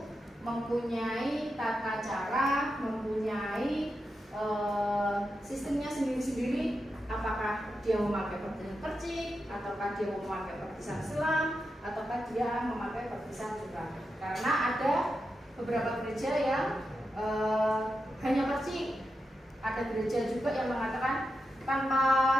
mempunyai tata cara, mempunyai sistemnya sendiri-sendiri. Apakah dia memakai baptisan percik, ataukah dia memakai baptisan selam, ataukah dia memakai baptisan curah. Karena ada beberapa gereja yang hanya percik. Ada gereja juga yang mengatakan tanpa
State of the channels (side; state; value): both; normal; correlation 0.88